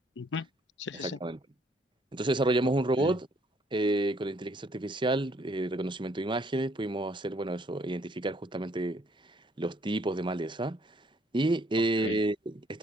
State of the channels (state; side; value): normal; both; correlation 0.65